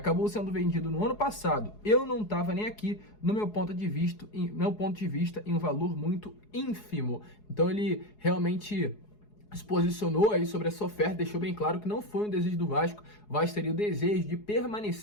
sendo vendido no ano passado. Eu não estava nem aqui, no meu ponto de vista, em um valor muito ínfimo. Então ele realmente se posicionou aí sobre essa oferta, deixou bem claro que não foi um desejo do Vasco. O Vasco teria o desejo de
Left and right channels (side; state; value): right; late; 4.8 ms